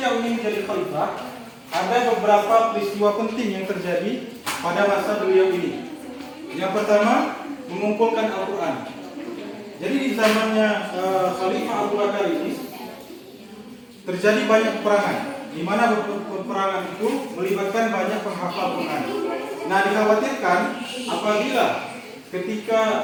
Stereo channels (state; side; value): identical; both; correlation 1.00